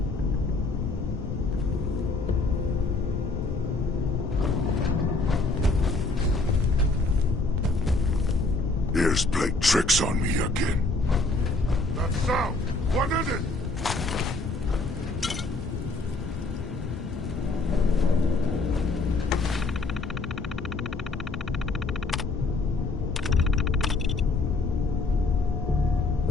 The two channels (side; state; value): right; quieter; 3.4 dB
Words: Ears played tricks on me again. That sound! What is it?